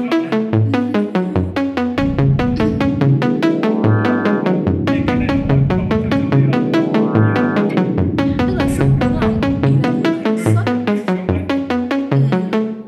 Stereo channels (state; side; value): identical; both; correlation 1.00